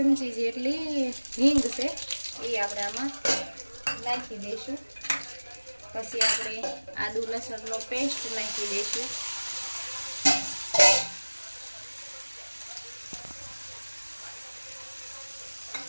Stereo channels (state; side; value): inverted; both; correlation -1.00